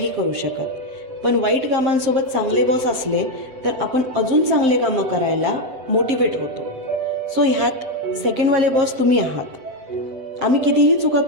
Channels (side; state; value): left; late; 7.6 ms